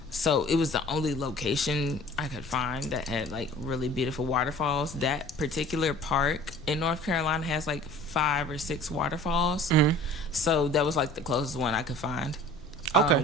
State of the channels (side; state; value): left; noise; rumble, 17 dB below the sound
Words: So it was the only location I could find that had like really beautiful waterfalls. That particular park in North Carolina has like 5 or 6 waterfalls. So that was like the closest one I could find. Okay.